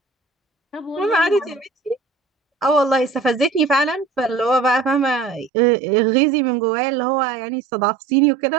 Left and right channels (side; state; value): left; drops out; at 5.5 s